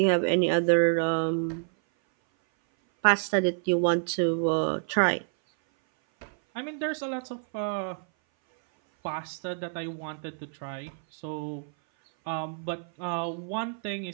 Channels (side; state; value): left; silent; 57 dB below the other